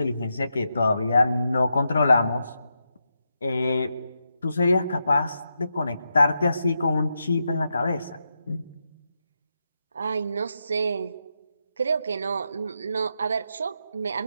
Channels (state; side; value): inverted; both; correlation -0.85